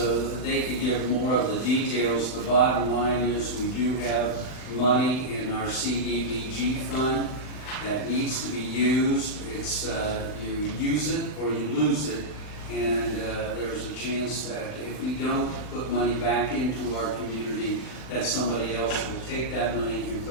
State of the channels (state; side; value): late; right; 39 ms